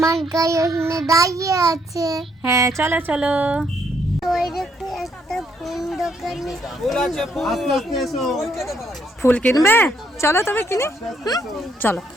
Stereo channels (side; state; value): both; normal; correlation 0.71